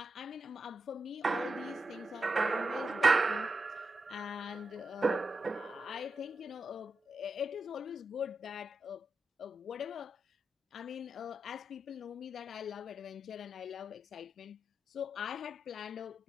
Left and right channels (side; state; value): both; normal; correlation 0.87